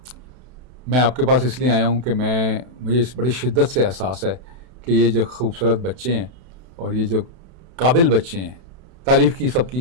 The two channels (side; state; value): left; late; 32 ms